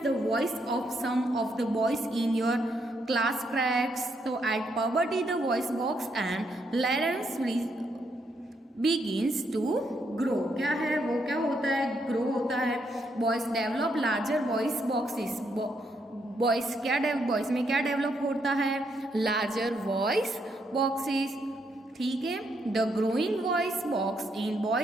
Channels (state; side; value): normal; both; correlation 0.76